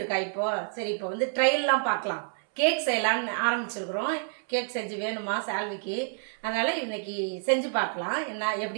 இருக்கா. இப்போ சரி, இப்போ வந்து ட்ரையல்லாம் பார்க்கலாம். கேக் செய்யலான்னு ஆரம்பிச்சிருக்கிறோம். கேக் செஞ்சு வேணுமா சால்விக்கு, அதனால் இன்னைக்கு செஞ்சு பார்க்கலாம் என்ன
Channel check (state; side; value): silent; left; 59 dB below the other